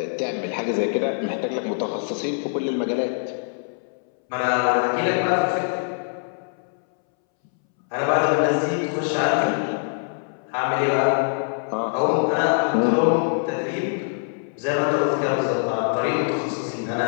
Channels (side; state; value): right; silent; 63 dB below the other